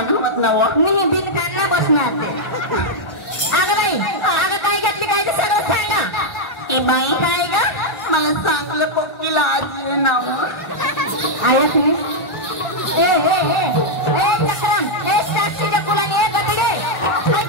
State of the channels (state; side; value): late; right; 1.4 ms